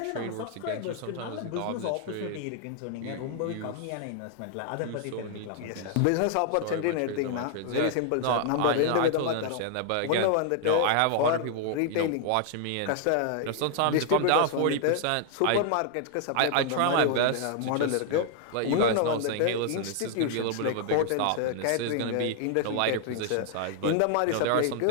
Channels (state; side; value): different; both; correlation 0.00